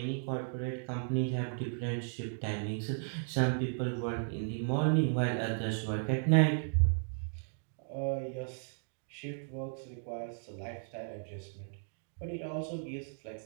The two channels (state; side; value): silent; left; digital silence